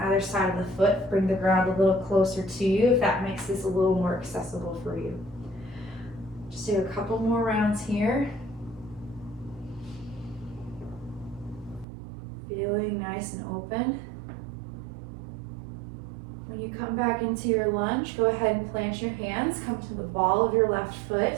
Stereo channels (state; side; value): drops out; left; at 11.9 s